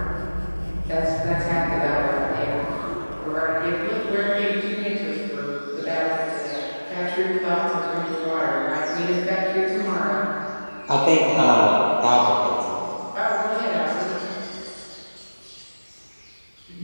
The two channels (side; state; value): both; inverted; correlation -1.00